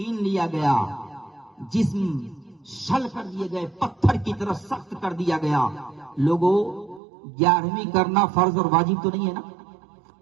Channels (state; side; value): drops out; left; at 7.0 s